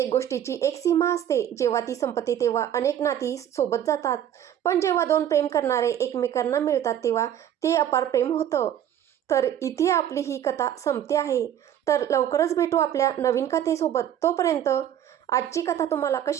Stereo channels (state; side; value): quieter; left; 10.4 dB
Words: गोष्टीची एक सीमा असते. जेव्हा ती संपते तेव्हा अनेक नाती सोबत जातात, पण जेव्हा दोन प्रेम करणारे एकमेकांना मिळतात तेव्हा ते अपार प्रेम होतं. तर इथे आपली ही कथा संपते आहे. तर लवकरच भेटू आपल्या नवीन कथेसोबत. तोपर्यंत आजची कथा तुम्हाला